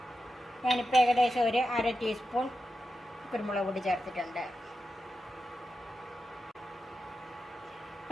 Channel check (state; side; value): normal; both; correlation 0.90